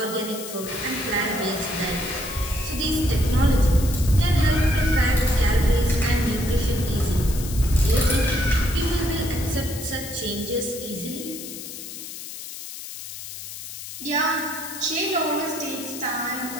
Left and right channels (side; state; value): left; noise; hiss, 10 dB below the sound